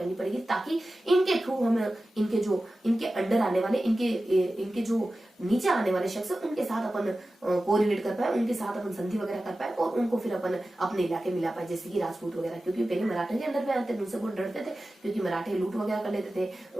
पड़ेगी, ताकि इनके थ्रू हम इनके अंडर आने वाले, इनके जो नीचे आने वाले शख्स उनके साथ अपन कोरिलेट कर पाए, उनके साथ अपन संधि वगैरह कर पाए और उनको फिर अपन अपने इलाके मिला पाए, जैसे कि राजपूत वगैरह। क्योंकि पहले मराठे के अंडर में आते थे, उनसे बहुत डरते थे क्योंकि मराठे लूट वगैरह कर लेते थे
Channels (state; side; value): normal; both; correlation 0.95